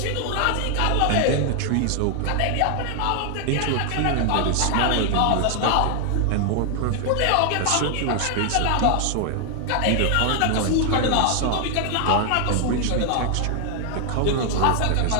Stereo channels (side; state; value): both; different; correlation 0.00